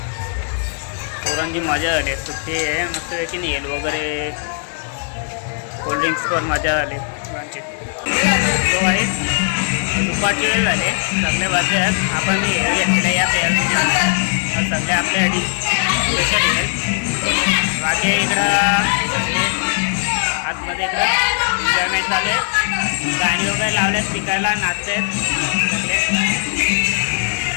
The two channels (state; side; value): silent; right; digital silence